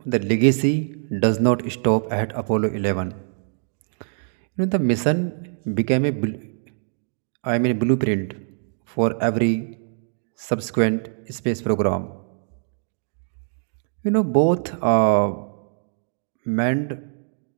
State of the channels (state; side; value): silent; left; digital silence